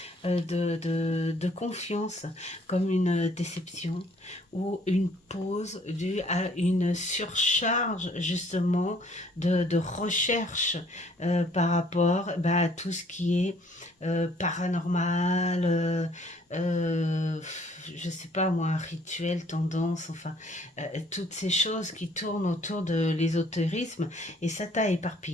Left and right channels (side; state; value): both; normal; correlation 0.60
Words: de confiance, comme une déception ou une pause due à une surcharge justement de recherche par rapport à tout ce qui est paranormal, je sais pas moi, rituel, tendance, enfin, toutes ces choses qui tournent autour de l'ésotérisme, et ça t'a